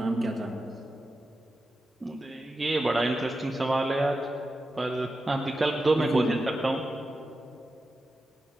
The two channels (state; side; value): normal; both; correlation 0.90